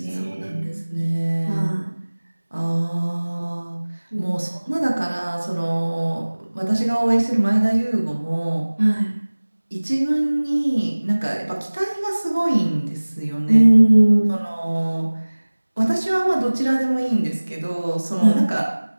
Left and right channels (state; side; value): inverted; both; correlation -1.00